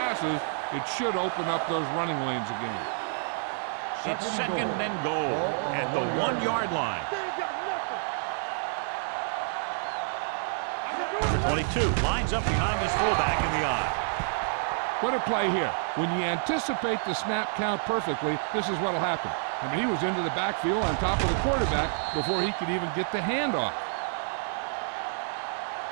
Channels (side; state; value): left; silent; digital silence